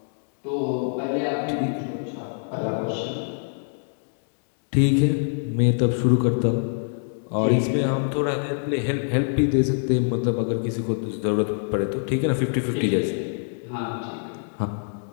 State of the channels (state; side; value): silent; right; digital silence